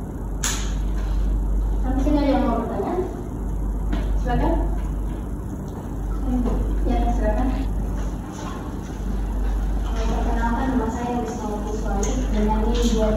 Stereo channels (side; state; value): both; identical; correlation 1.00